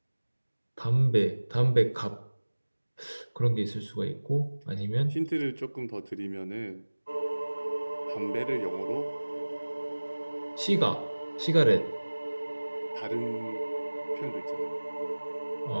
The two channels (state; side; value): inverted; both; correlation -1.00